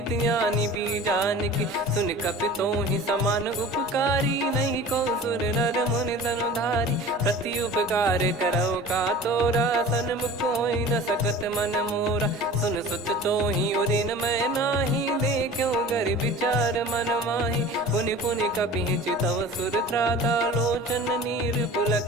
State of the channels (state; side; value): normal; both; correlation 0.40